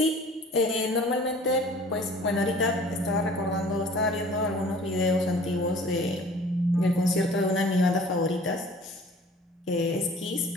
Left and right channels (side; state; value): both; normal; correlation 0.48